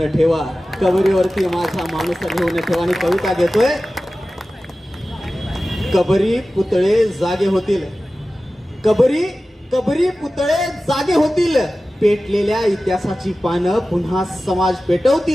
ठेवा. कबरीवरती माझा माणूस लिहून ठेवा. आणि कविता घेतोय. कबरी पुतळे जागे होतील, कबरी पुतळे जागे होतील, पेटलेल्या इतिहासाची पानं पुन्हा समाज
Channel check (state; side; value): normal; both; correlation 0.95